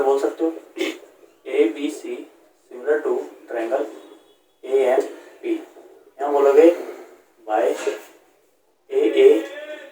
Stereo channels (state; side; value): identical; both; correlation 1.00